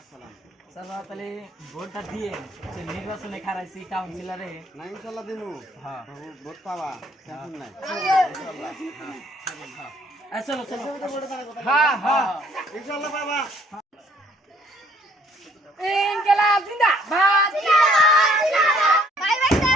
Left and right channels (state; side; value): normal; both; correlation 0.62